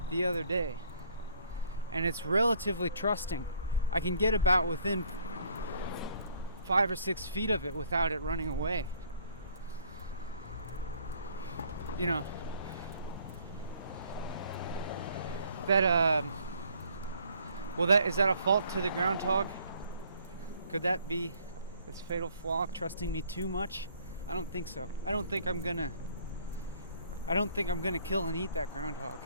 the other day, and it's relatively trusting. I can get about within 5 or 6 feet of it without it running away. Is that a fault to the groundhog? Could that be its fatal flaw, trusting me too much? I don't think so. I don't think I'm gonna kill and eat that groundhog.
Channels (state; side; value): inverted; both; correlation -0.61